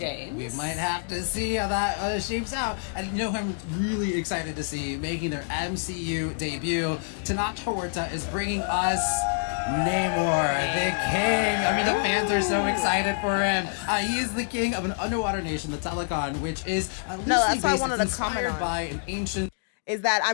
We might have to see how that shapes out. And you know who I'm really excited to see making their MCU debut? Tanat Horta is bringing us Namor, the king. I mean, the fans are so excited for him. He is the king of an underwater nation, the Telecon, which is that's what I wanted to comment on. By an ancient. Is that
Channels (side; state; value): right; silent; digital silence